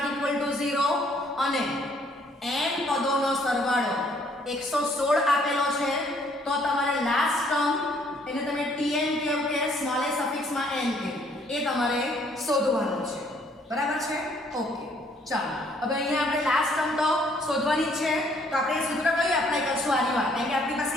ઇક્વલ ટુ 0 અને n પદોનો સરવાળો 116 આપેલો છે. તો તમારે લાસ્ટ ટર્મ એને તમે tn કેવું કે સ્મોલ a સફિક્સમાં n કે એ તમારે શોધવાનું છે. બરાબર છે? ઓકે. ચાલો હવે અહીંયા આપણે લાસ્ટ ટર્મ તો શોધવાની જ છે. તો આપણે એ સૂત્ર કયું એપ્લાય કરશું આની વાત? કારણ કે આપણી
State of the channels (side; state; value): both; normal; correlation 0.64